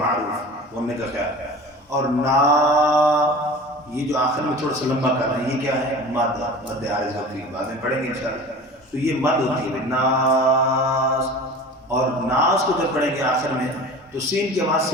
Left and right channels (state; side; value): normal; both; correlation 0.38